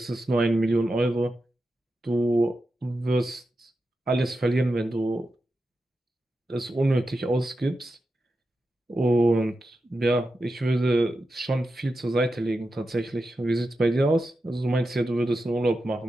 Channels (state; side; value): normal; both; correlation 0.90